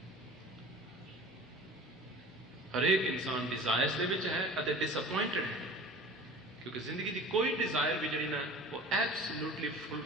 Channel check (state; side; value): normal; both; correlation 0.41